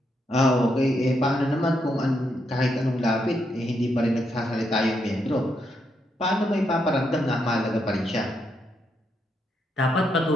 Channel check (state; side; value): normal; both; correlation 0.79